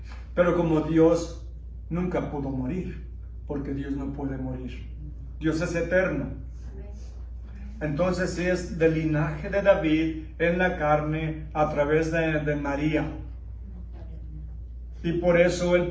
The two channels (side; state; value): both; identical; correlation 1.00